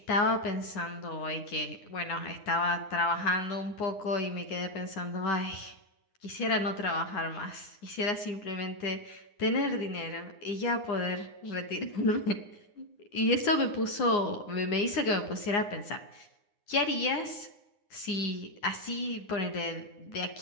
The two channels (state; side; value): late; right; 9.7 ms